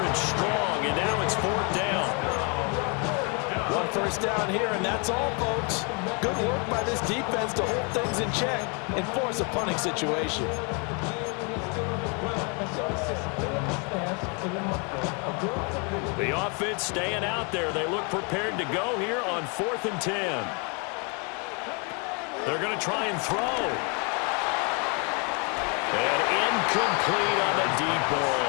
strong, and now it's 4th down. 1 first down here, and that's all, folks. Good work by this defense to hold things in check and force a punting situation. The offense staying out there. They look prepared to go here on 4th and 10. They're going to try and throw. And incomplete on the deep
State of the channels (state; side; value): quieter; right; 34.6 dB